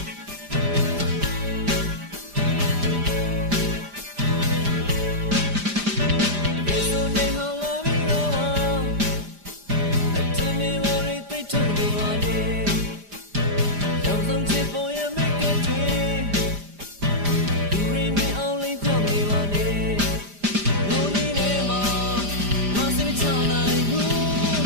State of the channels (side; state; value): left; late; 5.0 ms